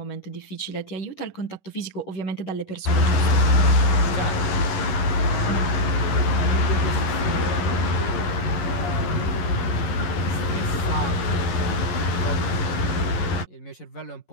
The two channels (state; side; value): late; right; 11 ms